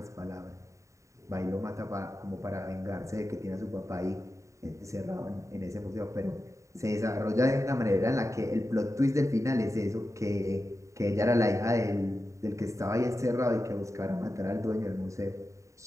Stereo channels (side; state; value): left; late; 0.15 ms